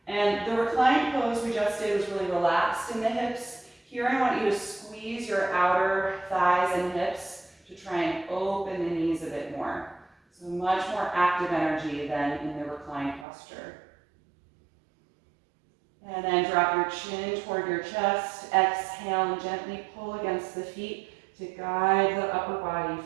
And the reclined pose we just did was really relaxed in the hips. Here I want you to squeeze your outer thighs and hips to try and open the knees a bit more. So much more active energy than in the reclined posture. And then drop your chin toward your chest. Exhale and gently pull against the feet to guide the upper body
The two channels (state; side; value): drops out; left; at 13.2 s